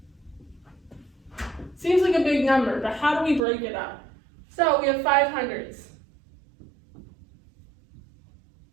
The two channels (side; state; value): left; drops out; at 3.4 s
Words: Seems like a big number, but how do we break it up? So we have 500s.